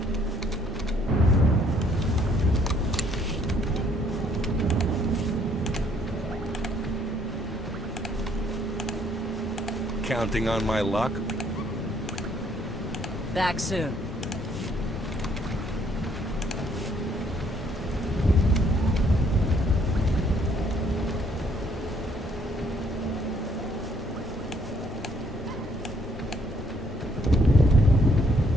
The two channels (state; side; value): normal; both; correlation 0.66